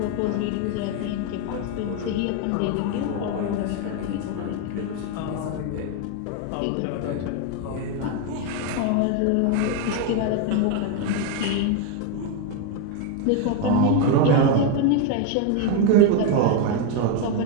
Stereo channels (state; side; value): different; both; correlation 0.01